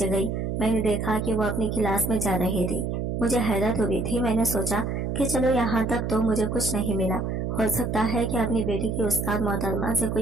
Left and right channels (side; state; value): right; noise; hum, 2 dB below the sound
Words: गई। मैंने देखा कि वो अपनी क्लास में जा रही थी। मुझे हैरत हुई थी। मैंने सोचा कि चलो यहाँ तक तो मुझे कुछ नहीं मिला, हो सकता है कि अपनी बेटी की उस्ताद मोहतरमा से